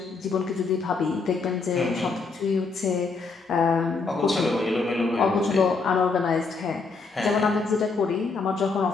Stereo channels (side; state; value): right; quieter; 4.3 dB